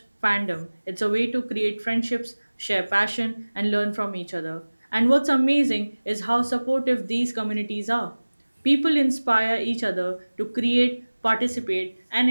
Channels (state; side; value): inverted; both; correlation -1.00